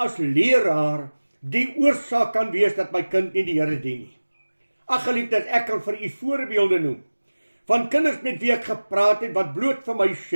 leraar die oorsaak kan wees dat my kind nie die Here dien nie. Ag geliefdes, ek kan vir u voorbeelde noem, van kinders met wie ek gepraat het, wat bloot vir my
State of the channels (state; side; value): inverted; both; correlation -1.00